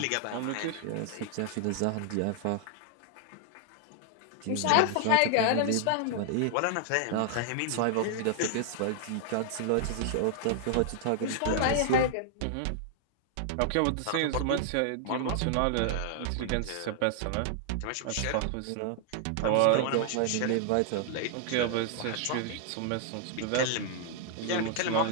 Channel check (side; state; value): both; different; correlation 0.00